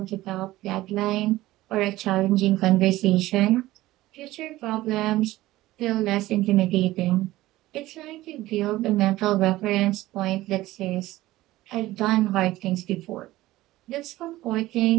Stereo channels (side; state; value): left; quieter; 16.8 dB